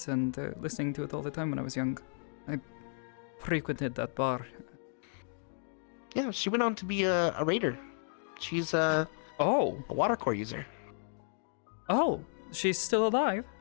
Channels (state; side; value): silent; right; digital silence